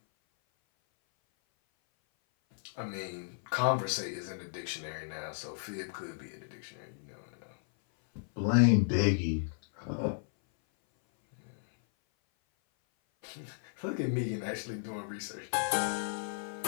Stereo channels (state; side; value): silent; right; 55 dB below the other